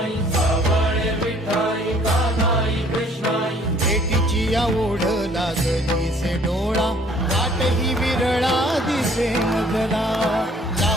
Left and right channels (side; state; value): both; normal; correlation 0.58